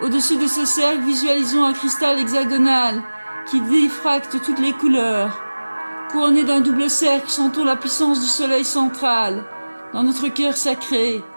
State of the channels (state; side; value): inverted; both; correlation -1.00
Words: Au-dessus de ce cercle, visualisons un cristal hexagonal qui diffracte toutes les couleurs. Couronné d'un double cercle, sentons la puissance du soleil central. Dans notre cœur sacré,